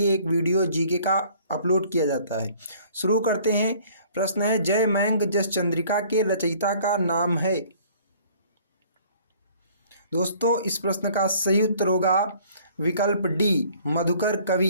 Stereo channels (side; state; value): both; inverted; correlation -0.55